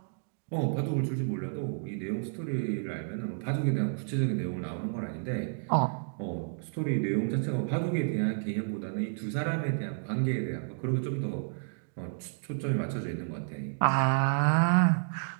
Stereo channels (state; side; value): silent; left; digital silence